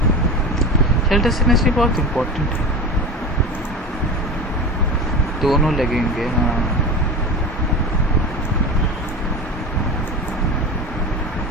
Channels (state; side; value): normal; both; correlation 0.28